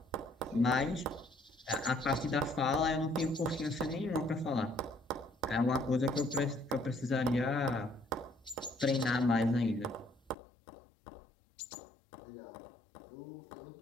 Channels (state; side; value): drops out; right; at 10.4 s